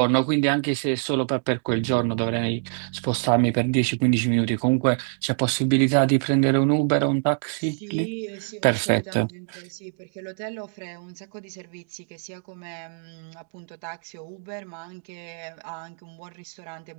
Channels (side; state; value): left; silent; digital silence